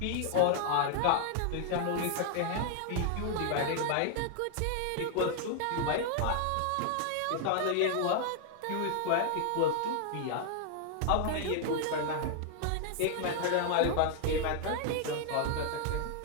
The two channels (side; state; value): both; different; correlation 0.00